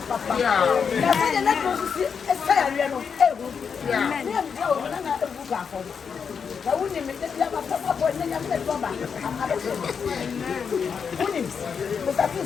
na sɛ yɛ n'aduro nso si ɛsɛ yareɛ no ɛhu ne yɛ mbia wɔ na na ɛhu baafɔ na wonim ne bi aba papapɔ ne nyame ne dɔba abɛsɛ wonim mosafo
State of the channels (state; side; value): quieter; right; 6.4 dB